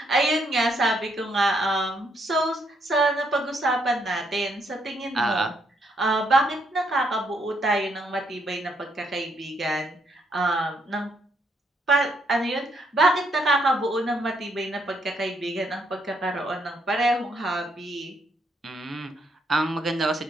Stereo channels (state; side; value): normal; both; correlation 0.74